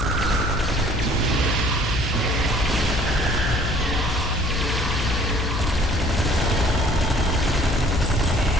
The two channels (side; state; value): left; noise; hum, 3 dB below the sound